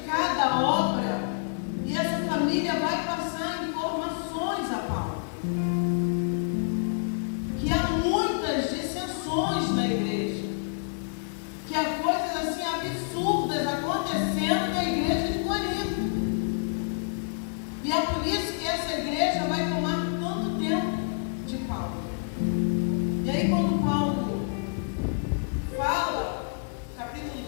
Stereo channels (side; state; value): right; silent; digital silence